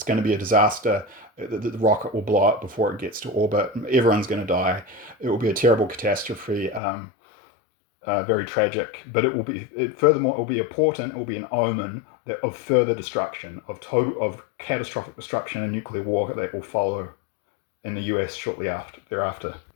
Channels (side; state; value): right; drops out; at 6.8 s